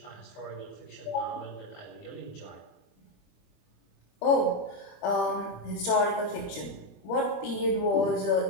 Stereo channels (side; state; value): right; late; 25 ms